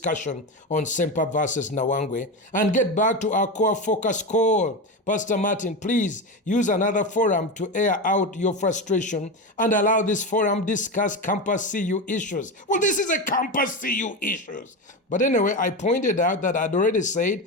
on Ssempa versus Nawangwe and get back to our core focus call. Pastor Martin, please use another forum to air out your frustration and allow this forum discuss campus CU issues. Well, this is a campus CU issues. But anyway, I pointed out that I'd already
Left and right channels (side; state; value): both; normal; correlation 0.18